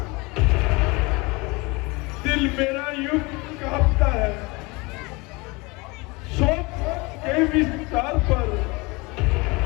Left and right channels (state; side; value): quieter; right; 25.7 dB